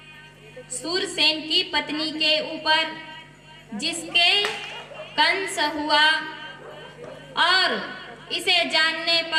सूरसेन की पत्नी के ऊपर, जिसके कंस हुआ। और इसे जानने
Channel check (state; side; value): identical; both; correlation 1.00